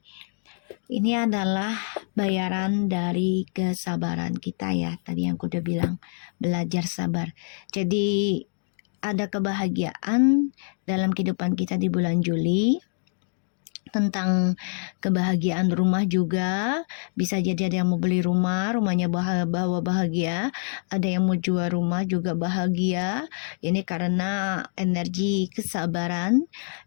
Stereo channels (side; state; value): right; silent; 61 dB below the other